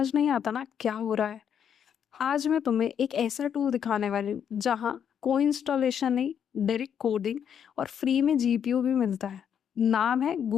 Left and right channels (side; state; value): right; quieter; 8.3 dB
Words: नहीं आता ना क्या हो रहा है। आज मैं तुम्हें एक ऐसा टूल दिखाने वाली हूँ जहाँ कोई इंस्टॉलेशन नहीं, डायरेक्ट कोडिंग और फ्री में जीपीयू भी मिलता है। नाम है